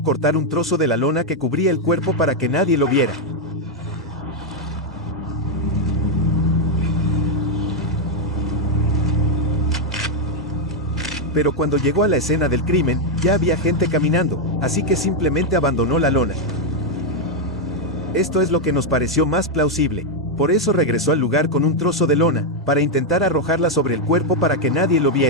cortar un trozo de la lona que cubría el cuerpo para que nadie lo viera. Pero cuando llegó a la escena del crimen, ya había gente caminando, así que simplemente abandonó la lona. Esto es lo que nos pareció más plausible. Por eso regresó al lugar con un trozo de lona, para intentar arrojarla sobre el cuerpo para que nadie lo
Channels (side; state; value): both; normal; correlation 0.01